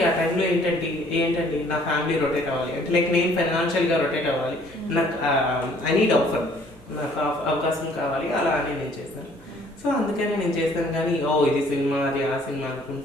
ఆ టైంలో ఏంటండి నా ఫ్యామిలీ రొటేట్ అవ్వాలి అంటే లైక్ నేను ఫైనాన్షియల్గా రొటేట్ అవ్వాలి, నాకు ఐ నీడ్ ఆఫర్, నాకు అవకాశం కావాలి, అలా అని నేను చేశాను. సో అందుకని నేను చేశాను. కానీ ఇది సినిమా అది ఆ సినిమా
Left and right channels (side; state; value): both; normal; correlation 0.59